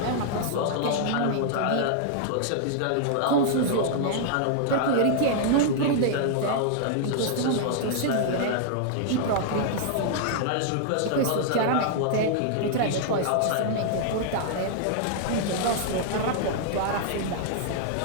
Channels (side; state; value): both; different; correlation -0.01